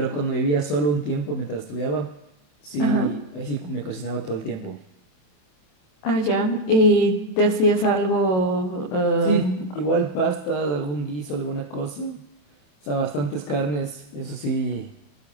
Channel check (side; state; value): right; late; 27 ms